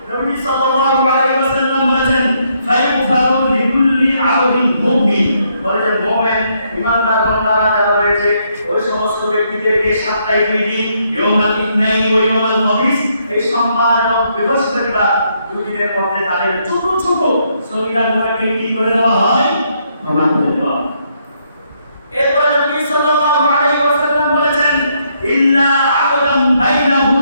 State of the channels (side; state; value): both; inverted; correlation -0.74